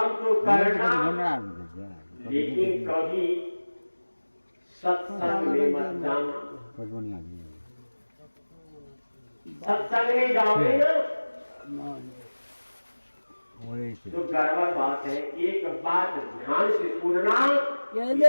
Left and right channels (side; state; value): both; inverted; correlation -1.00